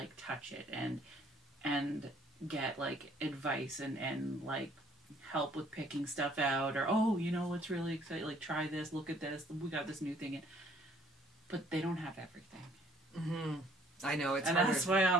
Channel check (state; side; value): normal; both; correlation 0.61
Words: touch it and get, like, advice and like, help with picking stuff out, or, oh, you know what's really exciting, like, try this, look at this, we got this new thing in. But they don't have everything. Mm-hmm. I know, it's and harder. That's why